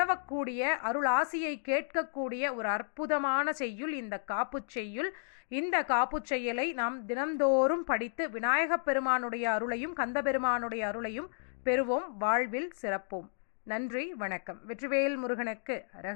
அருள் ஆசியை கேட்கக்கூடிய ஒரு அற்புதமான செய்யுள் இந்த காப்புச் செய்யுள். இந்த காப்புச் செய்யுளை நாம் தினந்தோறும் படித்து விநாயகப் பெருமானுடைய அருளையும் கந்தபெருமானுடைய அருளையும் பெறுவோம், வாழ்வில் சிறப்போம். நன்றி, வணக்கம். வெற்றிவேல் முருகனுக்கு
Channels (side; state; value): right; silent; digital silence